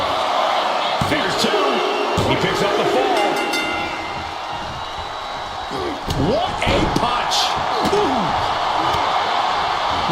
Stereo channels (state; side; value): identical; both; correlation 1.00